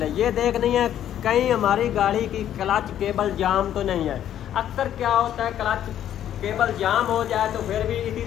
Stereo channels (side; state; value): right; quieter; 10.9 dB